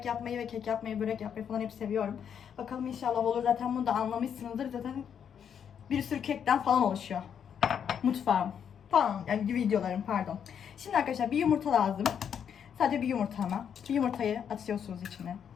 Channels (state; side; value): quieter; right; 8.1 dB